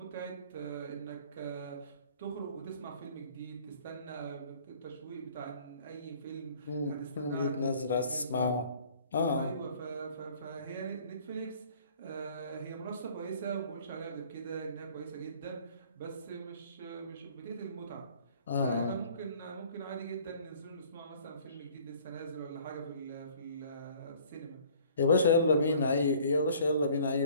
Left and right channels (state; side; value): inverted; both; correlation -0.53